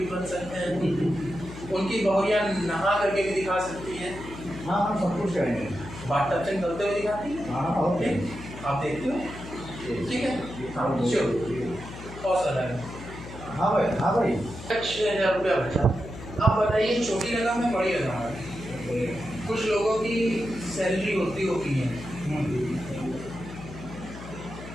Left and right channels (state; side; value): noise; left; hum, 13 dB below the sound